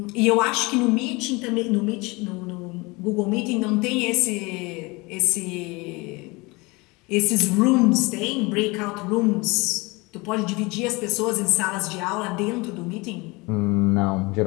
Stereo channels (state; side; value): quieter; right; 25.0 dB